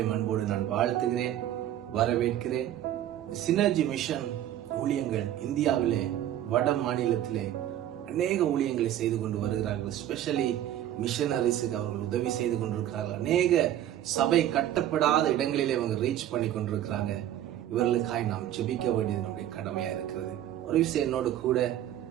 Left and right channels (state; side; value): quieter; left; 12.0 dB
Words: அன்போடு நான் வாழ்த்துகிறேன், வரவேற்கிறேன். சினர்ஜி மிஷன் ஊழியங்கள் இந்தியாவிலே வட மாநிலத்திலே அநேக ஊழியங்களை செய்து கொண்டு வருகிறார்கள். ஸ்பெஷலி மிஷனரிஸுக்கு அவர்கள் உதவி செய்து கொண்டிருக்கிறார்கள். அநேக சபை கட்டப்படாத இடங்களிலே அவங்க ரீச் பண்ணி கொண்டிருக்கிறாங்க. இவர்களுக்காய் நாம் ஜெபிக்க வேண்டியது நம்முடைய கடமையா இருக்கிறது. ஒரு விஷயம் என்னோடு கூட